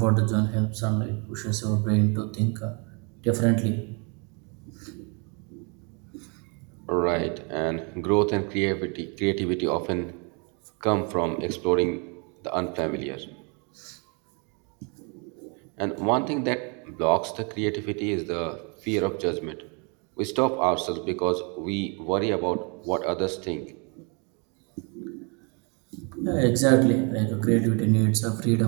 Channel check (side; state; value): left; quieter; 34.5 dB